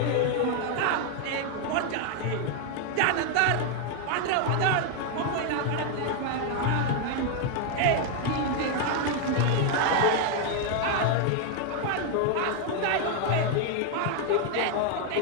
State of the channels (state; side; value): different; both; correlation 0.00